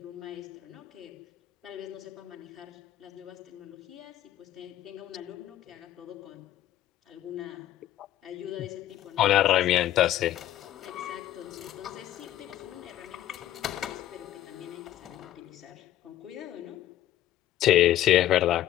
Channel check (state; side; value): quieter; right; 13.0 dB